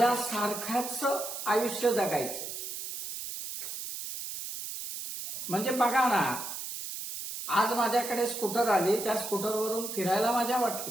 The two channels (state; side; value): noise; right; hiss, 7 dB below the sound